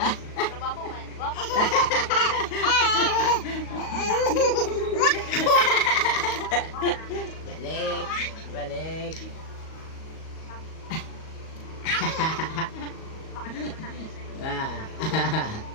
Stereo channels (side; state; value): right; late; 38 ms